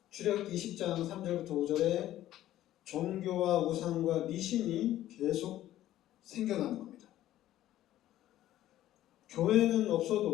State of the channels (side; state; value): right; quieter; 13.6 dB